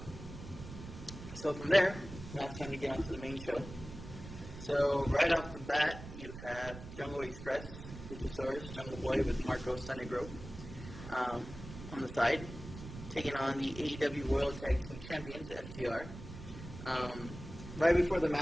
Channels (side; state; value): right; noise; rumble, 12 dB below the sound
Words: So from there, now it's time to get on to the main show. So right off the bat, you have Jungle Express, Luchasaurus, Jungle Boy with Marco Stunner Grove on the side, taking on the AEW World Tag Team Champions, FTR. Right before the